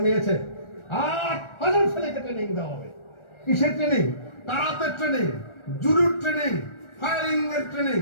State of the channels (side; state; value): right; late; 1.4 ms